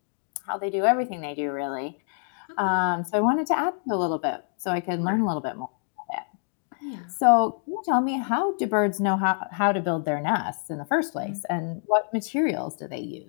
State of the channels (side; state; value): right; silent; digital silence